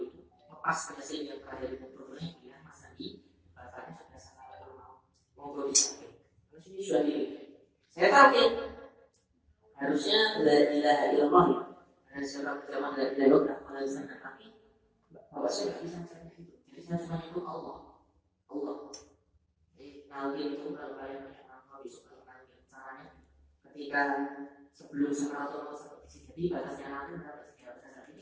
itu lepas ke Yasin yang terakhir itu problemnya dia Mas Andi bacanya sudah sampai rumah monggo disamping. Terus ini sudah di saya tahu harusnya la ilaha illallah ada surat zaman la ilaha illallah alasan tapi bapak saya nggak bisa mencapai itu. Jadi saya cuma itu Allah. Jadi nanti itu kalau kalian mau besok kalau caranya ketika sebelum Sakaratul Maut seperti jadi batasnya nanti berapa sih?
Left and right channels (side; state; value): both; identical; correlation 1.00